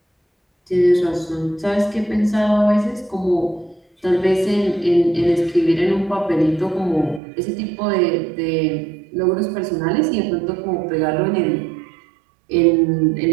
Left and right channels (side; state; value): left; drops out; at 7.2 s